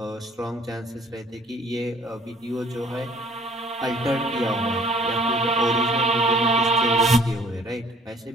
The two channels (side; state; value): both; normal; correlation 0.55